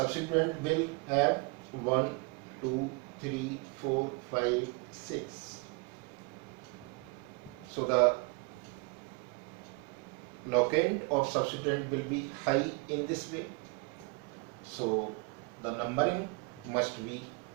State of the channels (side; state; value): left; quieter; 31.2 dB